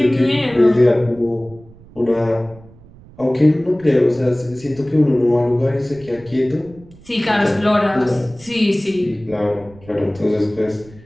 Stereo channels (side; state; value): right; noise; rumble, 23 dB below the sound